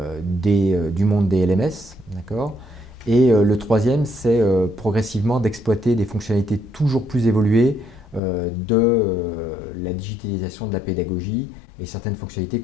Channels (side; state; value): right; drops out; at 8.2 s